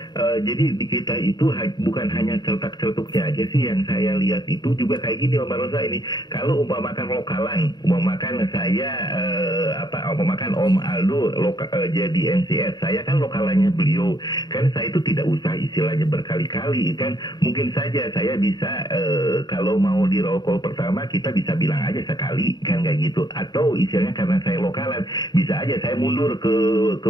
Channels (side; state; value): right; late; 0.21 ms